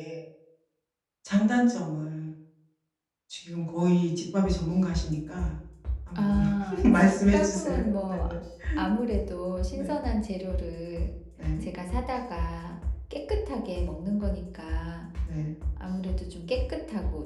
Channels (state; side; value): identical; both; correlation 1.00